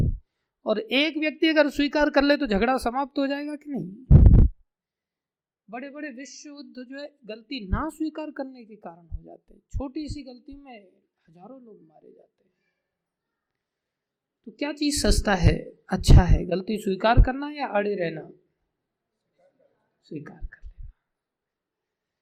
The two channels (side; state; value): both; identical; correlation 1.00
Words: और एक व्यक्ति अगर स्वीकार कर ले तो झगड़ा समाप्त हो जाएगा कि नहीं। बड़े बड़े विश्व युद्ध जो है गलती ना स्वीकार करने के कारण हो जाते हैं। छोटी सी गलती में हजारों लोग मारे जाते हैं। तो क्या चीज सस्ता है, अच्छा है? गलती स्वीकार करना या अड़े रहना? स्वीकार कर लेना।